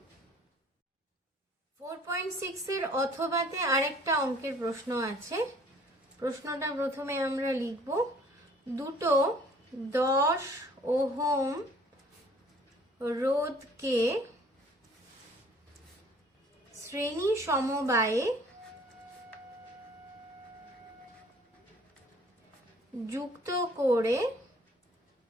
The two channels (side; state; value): both; normal; correlation 0.55